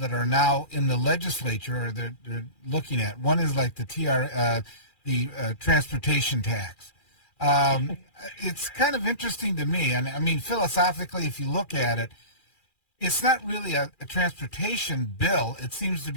are now in the legislature, or they're looking at. One is like the transportation tax. It's kind of interesting to me, and I mean, philosophically, if you look at it, it's not really a transportation bill. It seems to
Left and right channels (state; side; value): late; right; 2.4 ms